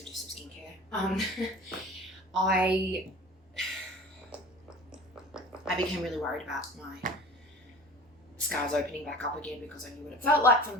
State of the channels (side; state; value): both; normal; correlation 0.40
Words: to do some skincare. I became really worried about my scars opening back up again, because I knew what it felt like for